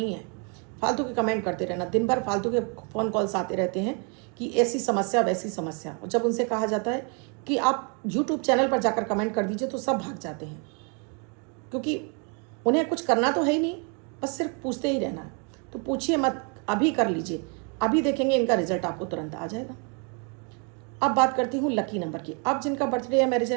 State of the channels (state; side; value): quieter; left; 36.6 dB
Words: है, फालतू के कमेंट करते रहना। दिन भर फालतू के फ़ोन कॉल्स आते रहते हैं कि ऐसी समस्या वैसी समस्या। और जब उनसे कहा जाता है कि आप यूट्यूब चैनल पर जाकर कमेंट कर दीजिए, तो सब भाग जाते हैं, क्योंकि उन्हें कुछ करना तो है ही नहीं, बस सिर्फ पूछते ही रहना है। तो पूछिए मत, अभी कर लीजिए, अभी देखेंगे इनका रिजल्ट आपको तुरंत आ जाएगा। अब बात करती हूँ लकी नंबर की। अब जिनका बर्थडे या मैरिज